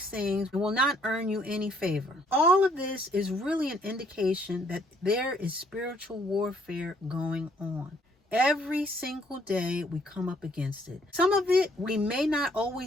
things will not earn you any favor. All of this is really an indication that there is spiritual warfare going on. Every single day we come up against it. Some of it we may not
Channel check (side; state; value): both; normal; correlation 0.65